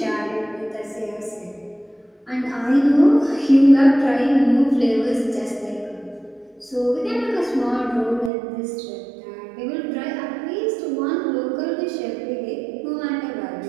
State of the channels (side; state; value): left; drops out; at 8.3 s